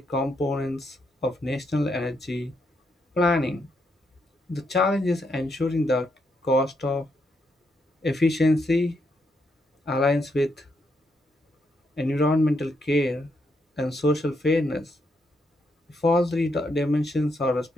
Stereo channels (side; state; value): both; normal; correlation 0.78